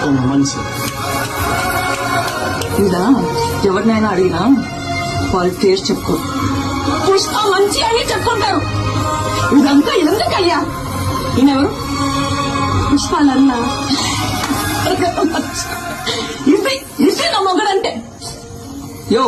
మనిషి. ఇలా ఎవరినైనా అడిగినా వాళ్ళు టేస్ట్ చెప్పుకో. పుష్ప మంచి అని చెప్పుకుంటారు. ఇదంతా ఎందుకయ్యా? ఈయనెవరు? పుష్పాలన్నా ఇది నా మొగడంటే. యో,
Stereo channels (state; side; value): identical; both; correlation 1.00